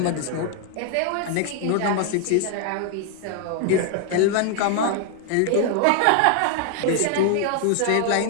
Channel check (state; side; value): different; both; correlation 0.00